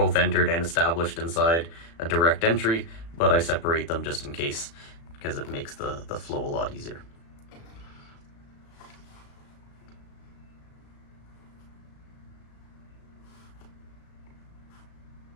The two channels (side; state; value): right; late; 36 ms